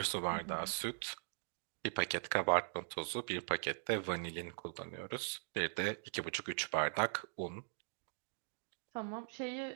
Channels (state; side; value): silent; left; digital silence